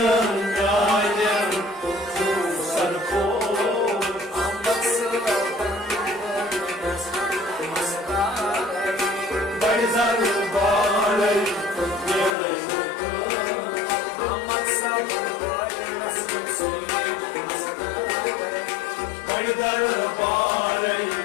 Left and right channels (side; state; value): right; drops out; at 12.4 s